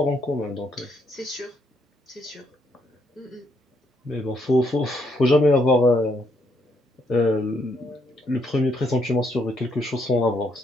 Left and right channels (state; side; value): normal; both; correlation 0.74